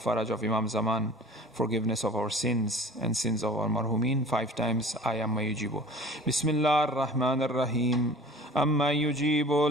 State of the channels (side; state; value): both; normal; correlation 0.44